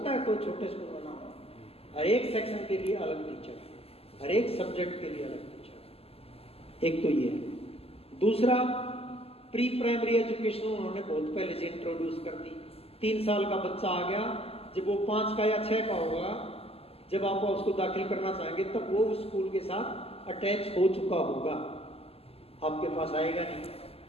है कोई छोटे स्कूल में ना हो। हर एक सेक्शन के लिए अलग टीचर है, हर एक सब्जेक्ट के लिए अलग टीचर। एक तो ये है। दूसरा, प्री प्राइमरी एजुकेशन उन्होंने बहुत पहले से इंट्रोड्यूस कर दी। 3 साल का बच्चा आ गया, जब वो 5 का या 6 का होगा, जब आप उसको दाखिल करना चाहेंगे तब वो उस स्कूल के साथ अटैच हो चुका होगा, आपके पास आएगा नहीं।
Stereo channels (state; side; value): late; right; 0.29 ms